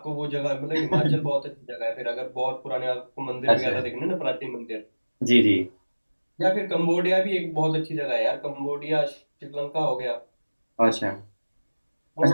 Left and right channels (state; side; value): inverted; both; correlation -1.00